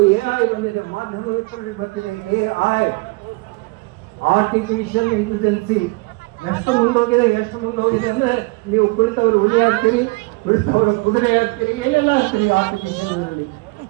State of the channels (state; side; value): quieter; left; 27.5 dB